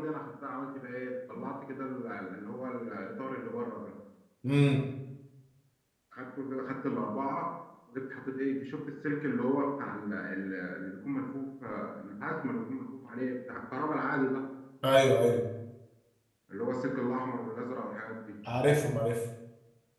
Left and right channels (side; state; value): both; identical; correlation 1.00